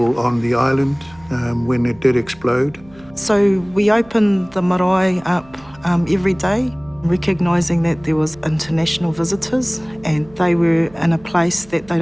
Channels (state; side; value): noise; right; hum, 25 dB below the sound